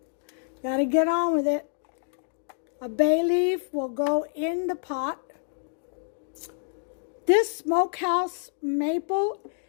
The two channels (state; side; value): silent; right; digital silence